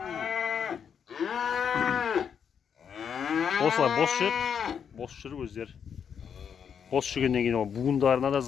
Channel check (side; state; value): right; quieter; 7.5 dB